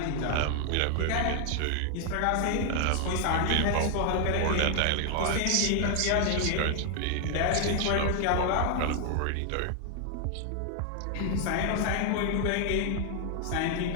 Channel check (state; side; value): different; both; correlation 0.00